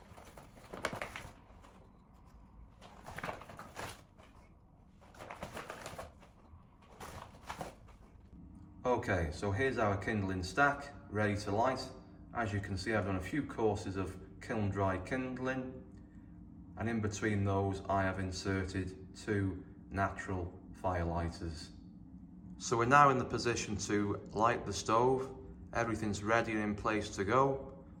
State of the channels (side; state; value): both; identical; correlation 1.00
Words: Okay, so here's our kindling stack ready to light. As you can see, I've done a few courses of kiln-dried kindling, and in between those I have inserted 2 natural firelighters. So we're now in the position to light the stove. Everything's ready and in place to go.